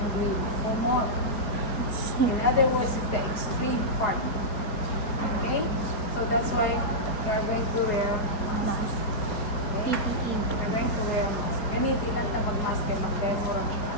Humot. In other words, it's the extreme part. Okay? So that's why you are going to wear mask. Okay? PPE. You're going to wear mask. Gamitin lang ta mag-mask kay mag-demo ra ka.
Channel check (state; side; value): late; right; 4.8 ms